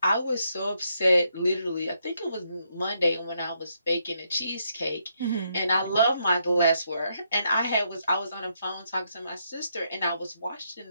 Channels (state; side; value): inverted; both; correlation -0.77